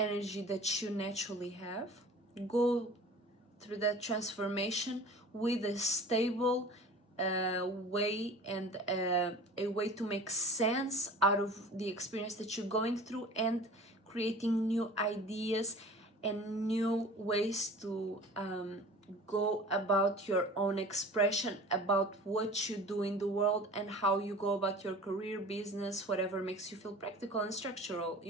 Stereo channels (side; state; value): both; normal; correlation 0.41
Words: that you naturally have. Go through that transformation with a stable way, and a way to make sense out of the experience that you're going through, and creating new ideas and new ways to go about your own expression, about what you do in the world, and how you go about your career, business, whatever makes you feel practical and structural,